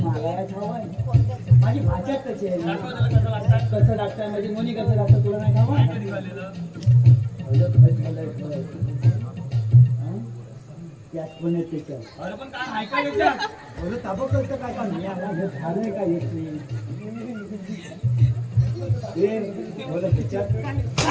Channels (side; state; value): both; identical; correlation 1.00